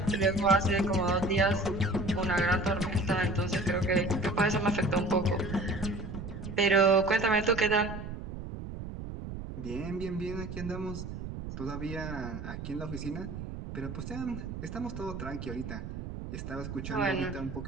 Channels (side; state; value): right; noise; rumble, 8 dB below the sound